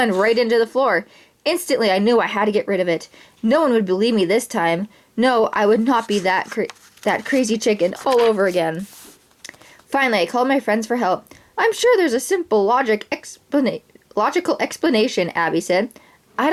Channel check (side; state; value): both; identical; correlation 1.00